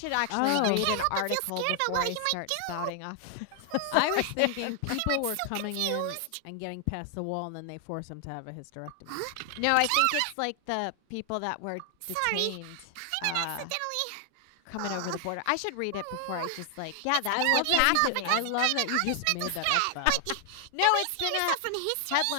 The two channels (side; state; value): both; different; correlation 0.00